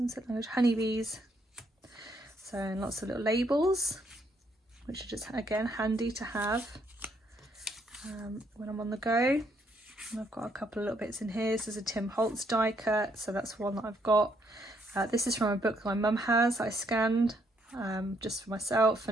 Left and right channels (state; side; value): normal; both; correlation 0.72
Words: certain language, honeybees. So, and lots of little labels, which are just again handy to have when I'm on the go. And I've got a couple of little bits in here. This is a Tim Holtz die cut, so that's one that I've got. This is from a book that my mum has, I scanned just for myself,